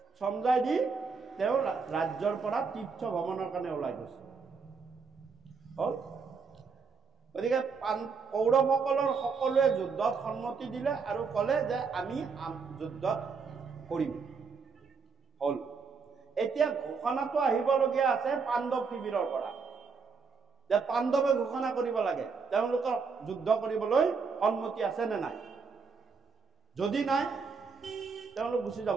সমজাই দি তেওঁ ৰাজ্যৰ পৰা তীৰ্থ ভ্ৰমণৰ কাৰণে ওলাই গৈছে। হ'ল। গতিকে কৌৰৱসকলৰ সকলোৱে যুদ্ধত সন্মতি দিলে আৰু ক'লে যে আমি যুদ্ধত কৰিম। হ'ল। এতিয়া ঘোষণাটো আহিবলগীয়া আছে পাণ্ডৱ শিবিৰৰ পৰা, যে পাণ্ডৱে ঘোষণা কৰিব লাগে তেওঁলোকৰ যুদ্ধ কৰিবলৈ সন্মতি আছে নে নাই। যদি নাই, তেওঁলোক গুচি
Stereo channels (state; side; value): quieter; left; 5.2 dB